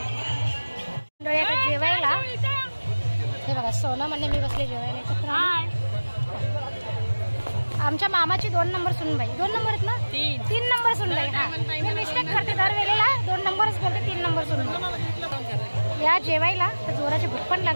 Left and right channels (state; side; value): inverted; both; correlation -1.00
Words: जेवायला. हे बघा सोना म्हणणे मी बसले जेवायला एकत्र. आमच्या मामाची 2 नंबर सुनबाई, 2 नंबर आहेत ना, 3 नंबर सुनबाई. हा मी मिस्टेक करते दरवेळेला, 2 नंबरच बोलते, 3 नंबर सुनबाई. या जेवायला तर जोराची भूक पण